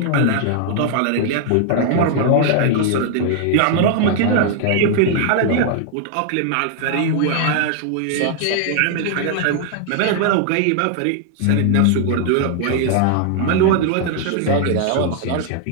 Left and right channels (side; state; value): both; different; correlation 0.00